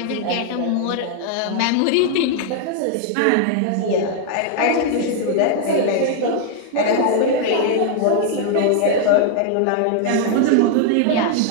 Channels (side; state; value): both; different; correlation 0.00